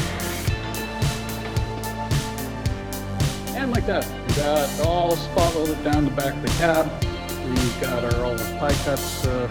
And like that, we got all spot welded down the back of the cab. We've got all the pie cuts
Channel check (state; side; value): identical; both; correlation 1.00